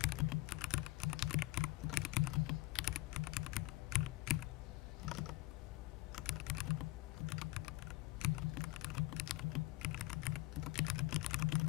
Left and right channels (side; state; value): right; quieter; 19.5 dB